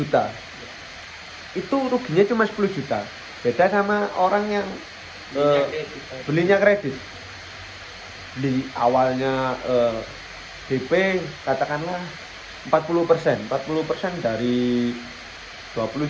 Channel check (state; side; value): identical; both; correlation 1.00